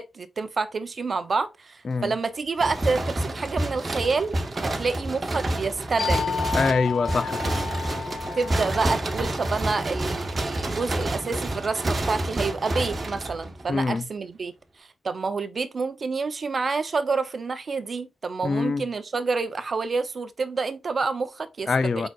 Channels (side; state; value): both; normal; correlation 0.89